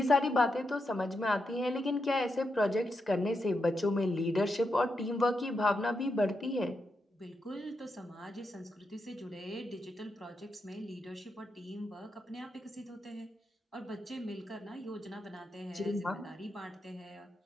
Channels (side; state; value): both; normal; correlation 0.84